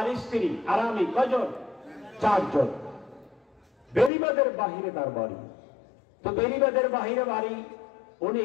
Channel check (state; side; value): drops out; right; at 4.1 s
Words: স্ত্রী আর আমি, কয়জন? 4 জন। বেরিবাদের বাহিরে তার বাড়ি। তো বেরিবাদের বাহিরে বাড়ি,